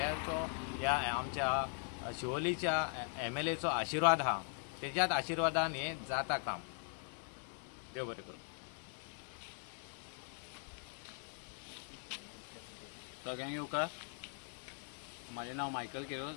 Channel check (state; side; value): silent; right; 51 dB below the other